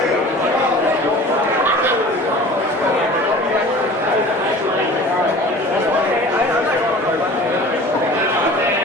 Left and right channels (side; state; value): both; normal; correlation 0.42